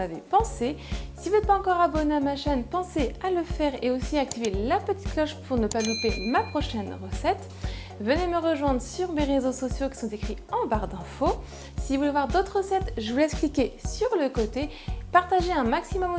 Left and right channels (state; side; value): identical; both; correlation 1.00